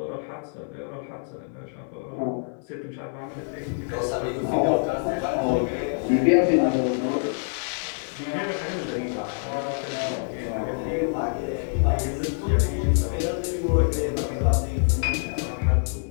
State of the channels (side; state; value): right; silent; digital silence